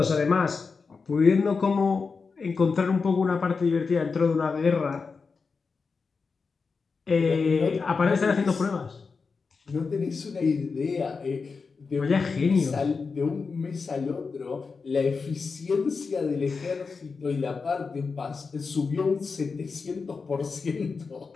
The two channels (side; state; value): right; quieter; 4.8 dB